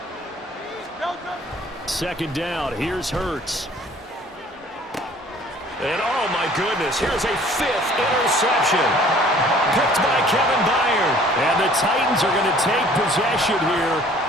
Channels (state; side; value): normal; both; correlation 0.53